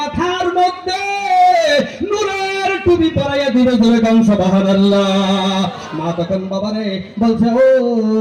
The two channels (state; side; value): identical; both; correlation 1.00